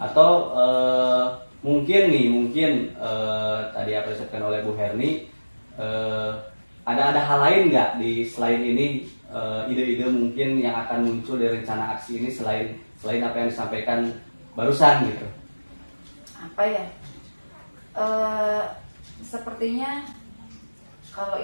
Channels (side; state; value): both; inverted; correlation -1.00